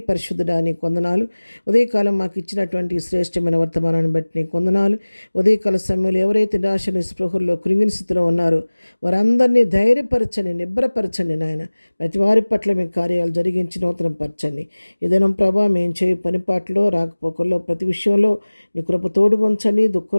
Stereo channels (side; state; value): both; inverted; correlation -1.00